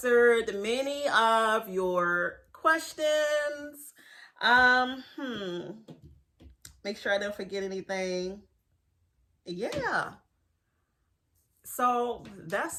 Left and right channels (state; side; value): identical; both; correlation 1.00